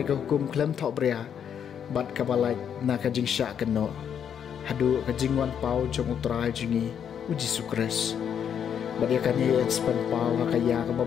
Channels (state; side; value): quieter; right; 8.3 dB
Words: ka hukum klem thok bria bat kabalai na kajing syak keno hadu kajing wan pau jong utrai jingi Jesu Kris Badiakan ia ekspan pau hakaya